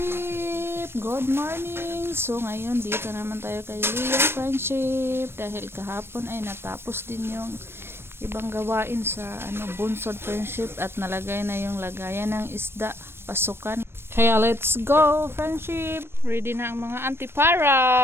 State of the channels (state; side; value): late; left; 0.12 ms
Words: Good morning! So ngayon dito naman tayo kay Leo friendship dahil kahapon ay natapos din yung ibang gawain sa bunsod friendship at nalagay na yung lagayan ng isda pasukan. Kaya let's go friendship! Ready na ang mga antipara!